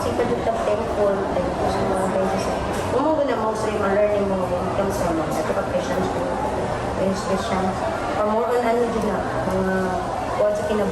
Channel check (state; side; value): identical; both; correlation 1.00